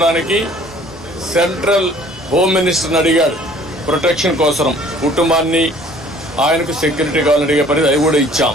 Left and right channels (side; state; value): both; normal; correlation 0.54